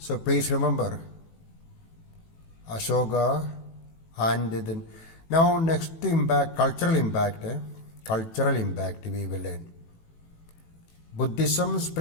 please remember Ashoka. And then now next impact, cultural impact we will learn. Buddhism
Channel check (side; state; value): right; late; 18 ms